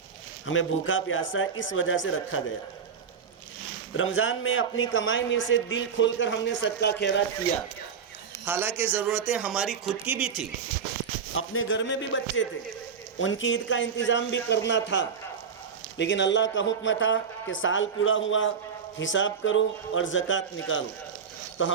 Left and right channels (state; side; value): quieter; left; 6.6 dB